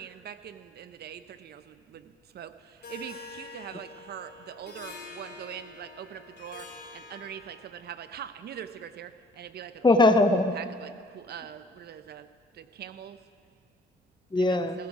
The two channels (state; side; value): normal; both; correlation 0.55